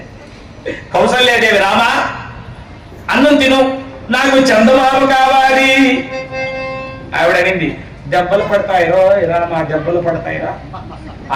కౌసల్యాదేవి, రామా అన్నం తిను, నాకు చందమామ కావాలి. ఆవిడ అనింది, దెబ్బలు పడతాయిరో రామా, దెబ్బలు పడతాయిరా,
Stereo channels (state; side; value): identical; both; correlation 1.00